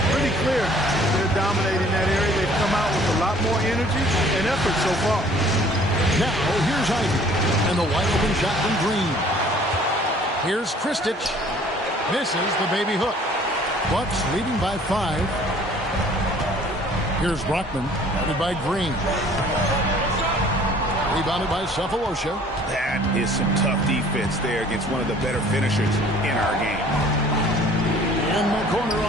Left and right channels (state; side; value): normal; both; correlation 0.54